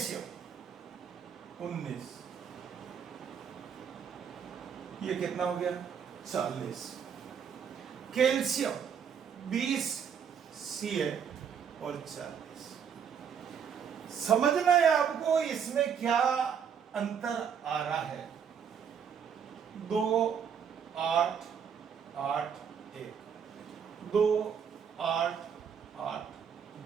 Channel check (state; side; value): quieter; left; 7.4 dB